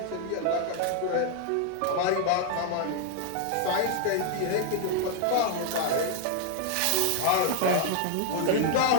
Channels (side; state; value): both; different; correlation 0.00